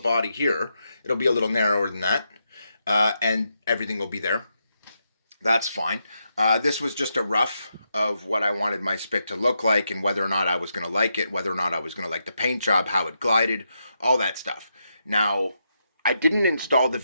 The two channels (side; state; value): both; inverted; correlation -0.83